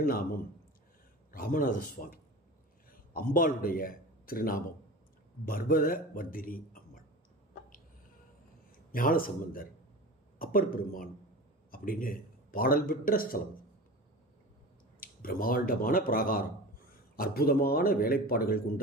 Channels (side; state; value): both; normal; correlation 0.33